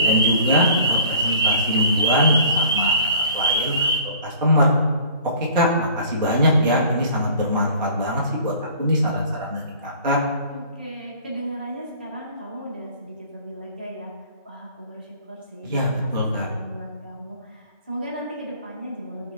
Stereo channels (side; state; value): both; inverted; correlation -0.48